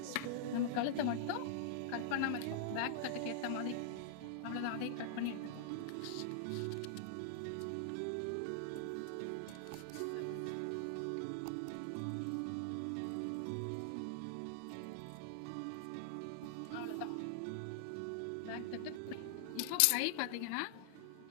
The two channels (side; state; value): both; different; correlation -0.01